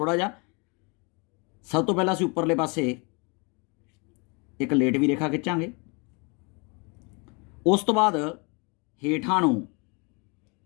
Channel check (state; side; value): quieter; right; 31.3 dB